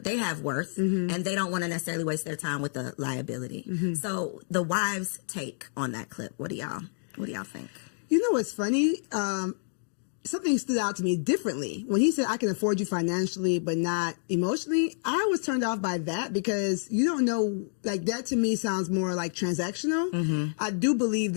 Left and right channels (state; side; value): silent; right; digital silence